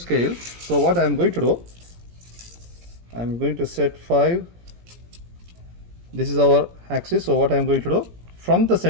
So what I am going to do, I am going to set 5. This is our axis. So what I am going to do, from the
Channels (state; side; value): late; left; 17 ms